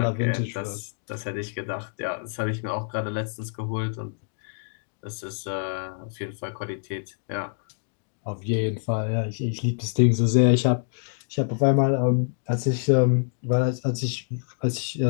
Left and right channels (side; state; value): right; silent; digital silence